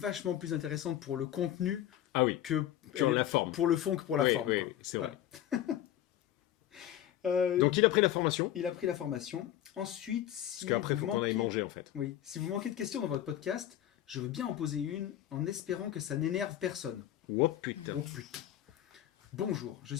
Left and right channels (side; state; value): right; quieter; 12.1 dB